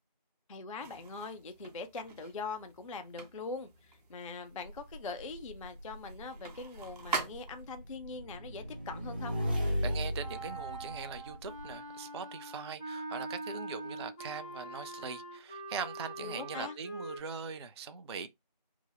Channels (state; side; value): inverted; both; correlation -0.39